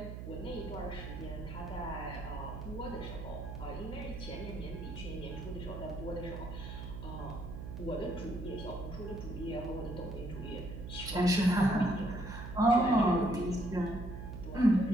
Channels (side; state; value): right; noise; hum, 8 dB below the sound